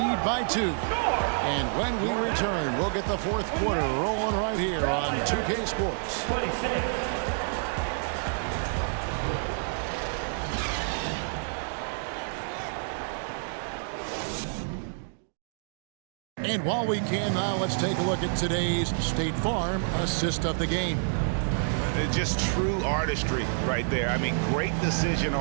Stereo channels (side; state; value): left; silent; digital silence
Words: by 2. And when we return, we'll get the fourth quarter rolling right here on 2K Sports. 26. And while we can now, let's take a look at today's State Farm assist of the game. Just true artistry right there. I mean, great decision